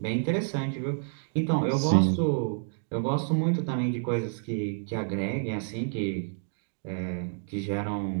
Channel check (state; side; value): silent; left; digital silence